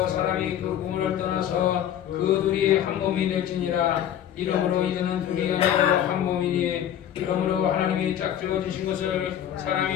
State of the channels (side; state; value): right; quieter; 10.5 dB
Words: 사람이 그 꿈을 떠나서 그 둘이 한 몸이 될지니라. 이러므로 이제는 둘이 아니고 한 몸이니 이러므로 하나님이 짝지어 주신 것을